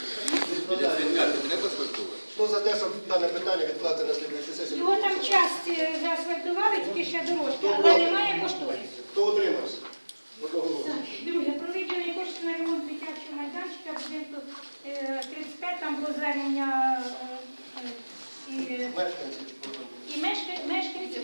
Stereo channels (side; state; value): both; inverted; correlation -1.00